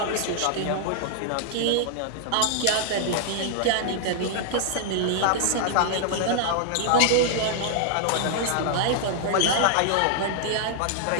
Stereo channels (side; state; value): both; different; correlation -0.01